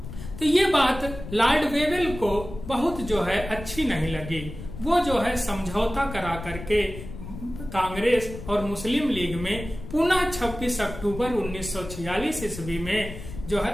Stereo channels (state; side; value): noise; left; rumble, 11 dB below the sound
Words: तो ये बात लॉर्ड वेवेल को बहुत जो है अच्छी नहीं लगी। वो जो है समझौता करा करके कांग्रेस और मुस्लिम लीग में पुनः 26 अक्टूबर 1946 ईस्वी में जो है